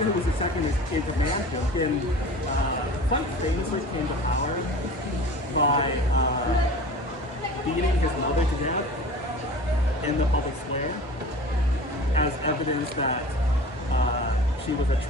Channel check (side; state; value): both; normal; correlation 0.39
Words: who was second in command Wilkin quite famously came to power by beating his mother to death in the public square as evidence that she was a